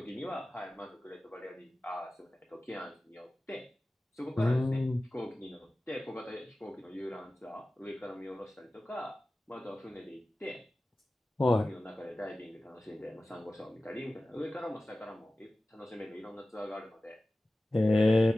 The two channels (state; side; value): normal; both; correlation 0.96